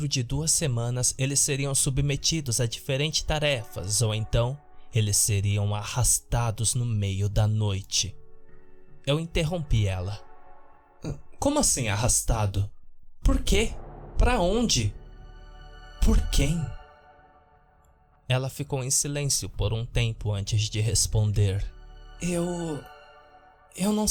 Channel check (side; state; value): both; identical; correlation 1.00